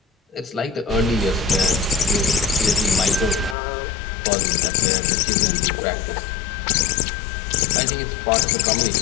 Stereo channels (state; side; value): drops out; right; at 3.6 s